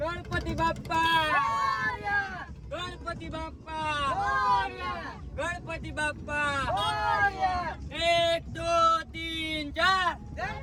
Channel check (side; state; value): both; identical; correlation 1.00